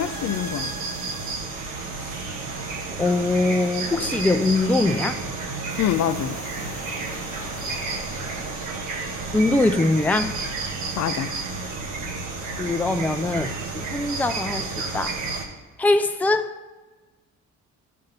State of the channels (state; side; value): normal; both; correlation 0.61